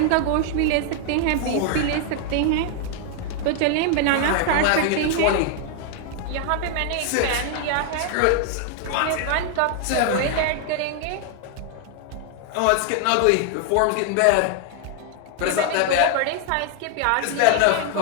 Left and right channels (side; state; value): both; different; correlation 0.00